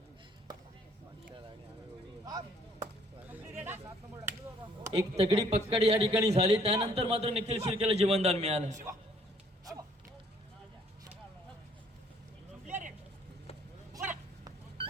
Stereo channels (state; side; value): normal; both; correlation 0.62